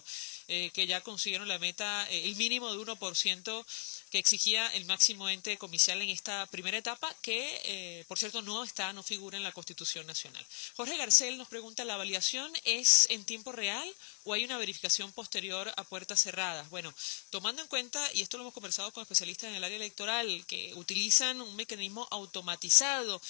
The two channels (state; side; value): silent; right; 54 dB below the other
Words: que ya consiguieron la meta, el mínimo de 1% que exigía el máximo ente comicial en esta primera etapa, que, por cierto, no figura en la Constitución Nacional. Jorge Garcel nos pregunta, ¿la validación es en tiempo real o hay una verificación posterior a puertas cerradas? Bueno, tomando en cuenta, y esto lo hemos conversado con especialistas en el área electoral, que utilizan un mecanismo automatizado